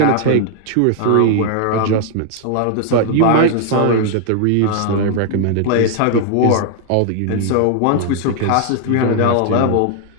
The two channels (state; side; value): different; both; correlation 0.00